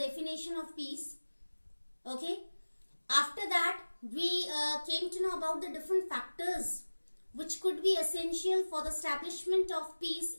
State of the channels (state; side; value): inverted; both; correlation -1.00